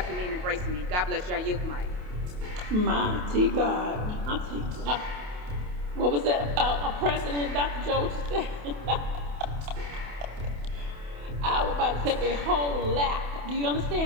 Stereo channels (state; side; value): late; left; 28 ms